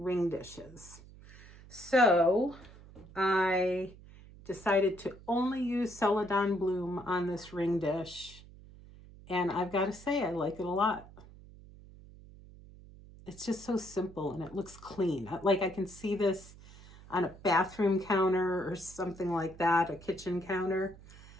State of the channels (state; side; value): noise; right; hum, 20 dB below the sound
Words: ring dishes. So I decided to only use Celadon Bloom on this ring dish, and I've got to say I like it a lot. It's just so simple and it looks clean. Like I can see this on a bathroom counter or something like that, a kitchen counter,